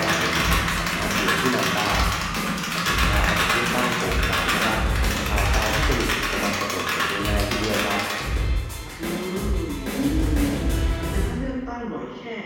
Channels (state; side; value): identical; both; correlation 1.00